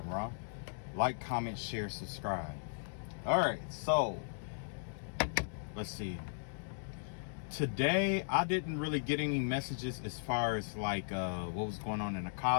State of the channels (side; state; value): right; silent; digital silence